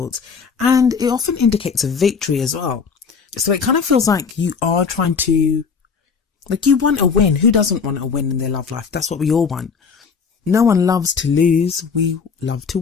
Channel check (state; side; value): quieter; right; 5.7 dB